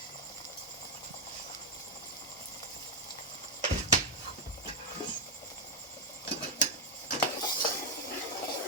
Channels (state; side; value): normal; both; correlation 0.01